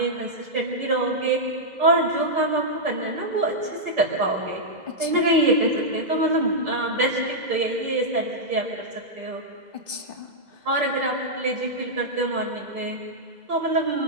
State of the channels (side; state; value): left; late; 2.0 ms